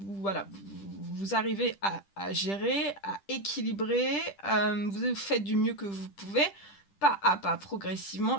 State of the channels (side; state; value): right; late; 10 ms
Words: arrivez à gérer, à équilibrer, vous faites du mieux que vous pouvez, pas à pas, progressivement,